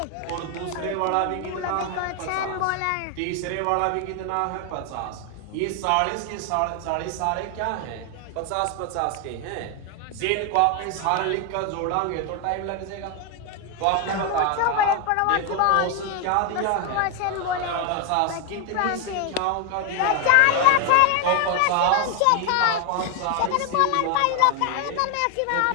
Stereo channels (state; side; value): different; both; correlation 0.01